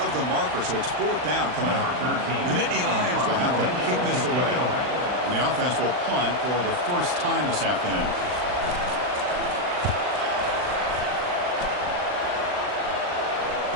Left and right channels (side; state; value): left; late; 39 ms